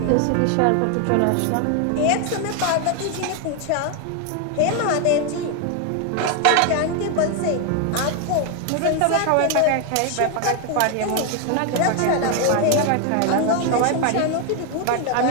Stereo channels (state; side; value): different; both; correlation 0.01